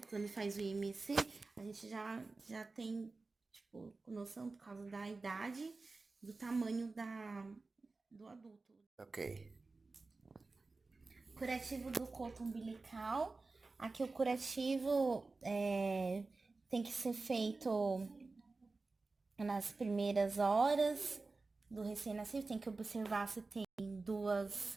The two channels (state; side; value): quieter; left; 3.7 dB